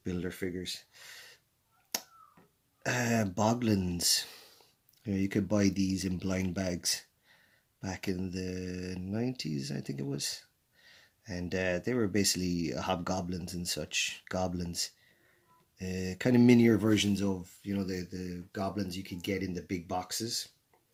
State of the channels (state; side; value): identical; both; correlation 1.00